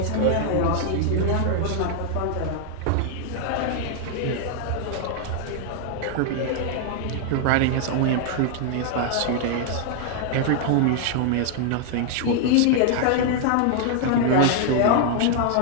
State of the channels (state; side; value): different; both; correlation 0.00